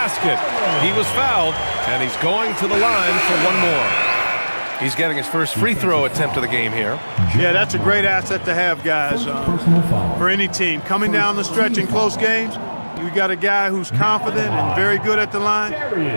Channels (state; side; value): inverted; both; correlation -1.00